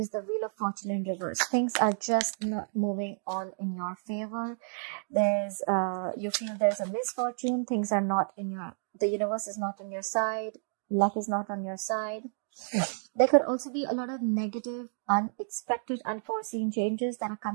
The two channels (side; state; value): left; silent; digital silence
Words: the Wheel of Fortune in reverse. Things are just not moving on in your favor. There's, you feel there's a misfortune. Things are not in your, the universe is not on your side. Luck is not on your side. There could also be a lot of negative, unexpected, unforeseen changes that are